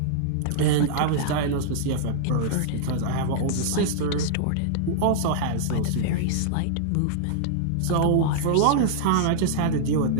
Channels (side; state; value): both; different; correlation -0.01